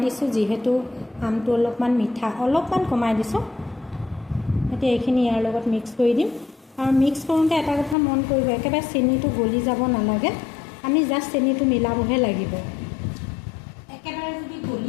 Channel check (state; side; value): drops out; right; at 8.0 s